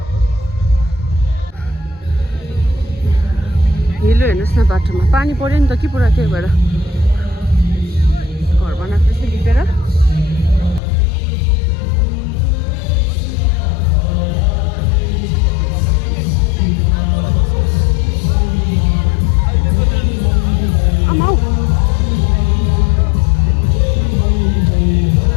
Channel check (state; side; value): drops out; right; at 10.8 s